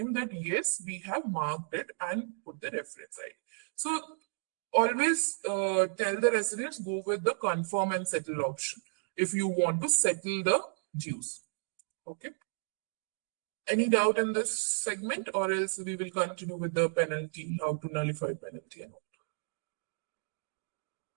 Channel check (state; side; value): silent; left; digital silence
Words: that yes, we have marked it and put the reference ID. So always tell the residents go with the confirm and settle option if you want to settle the dues. Okay. Any doubt in this segment, or else we will continue with the penalty, how to nullify penalty and